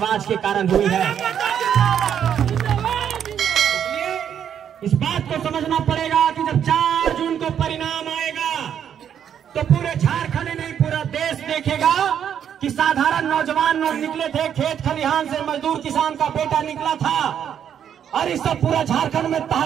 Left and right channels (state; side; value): quieter; left; 8.9 dB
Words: के कारण हुई है। इस बात को समझना पड़ेगा कि जब 4 जून को परिणाम आएगा तो पूरे झारखंड नहीं पूरा देश देखेगा कि साधारण नौजवान लोग निकले थे, खेत खलिहान से मजदूर किसान का बेटा निकला था और इस सब पूरा झारखंड में